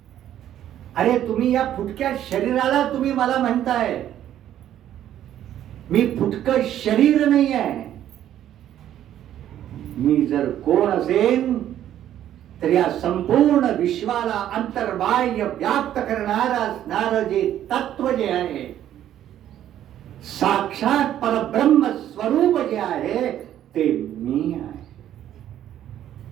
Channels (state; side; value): quieter; left; 11.4 dB